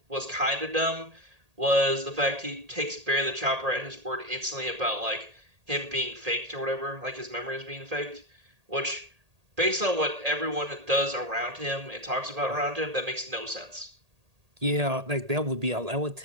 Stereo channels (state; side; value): late; left; 1.8 ms